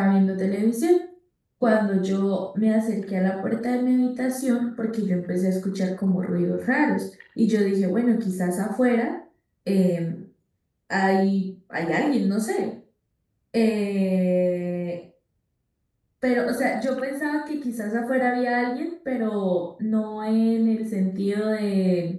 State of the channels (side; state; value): both; identical; correlation 1.00